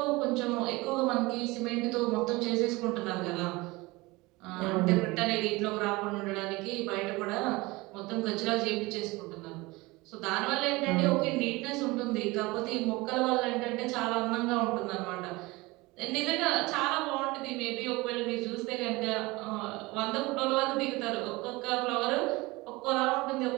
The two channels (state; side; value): quieter; left; 22.5 dB